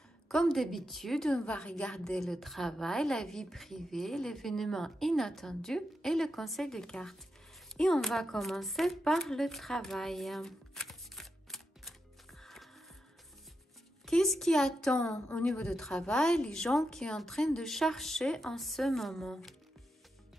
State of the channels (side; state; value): both; normal; correlation 0.87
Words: Comme d'habitude, on va regarder le travail, la vie privée, l'événement inattendu et le conseil de cartes. Et on va commencer par le travail. Qu'est-ce qui attend au niveau du travail les gens qui sont en train de chercher en ce moment?